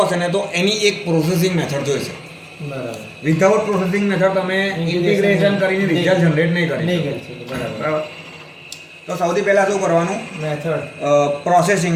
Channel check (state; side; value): identical; both; correlation 1.00